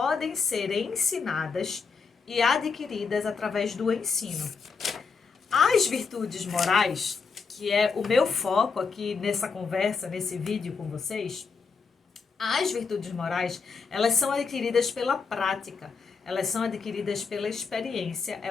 ser ensinadas e adquiridas através do ensino. As virtudes morais, que é o meu foco aqui nessa conversa, nesse vídeo com vocês, as virtudes morais, elas são adquiridas pela prática, elas são adquiridas pela experiência,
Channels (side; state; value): right; quieter; 5.2 dB